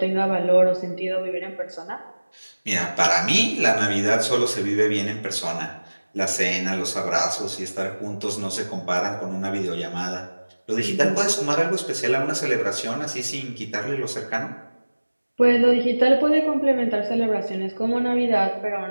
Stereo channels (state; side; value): inverted; both; correlation -1.00